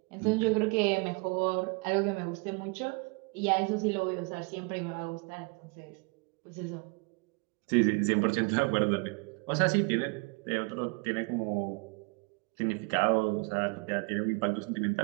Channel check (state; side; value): quieter; left; 31.0 dB